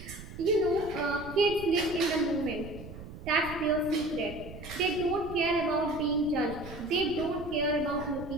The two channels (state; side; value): noise; right; rumble, 13 dB below the sound